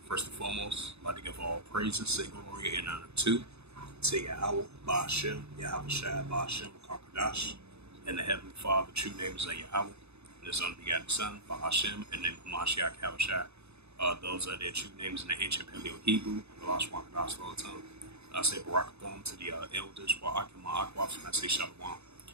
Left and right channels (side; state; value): left; late; 0.80 ms